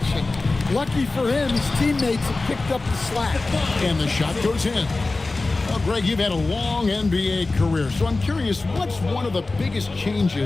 Lucky for him, his teammates have picked up the slack. And the shot goes in. Well, Greg, you've had a long NBA career, so I'm curious, what's one of the biggest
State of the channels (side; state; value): right; quieter; 3.4 dB